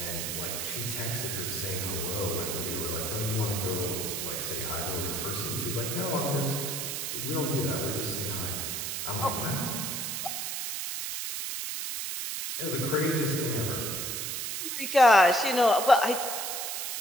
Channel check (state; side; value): noise; right; hiss, 3 dB below the sound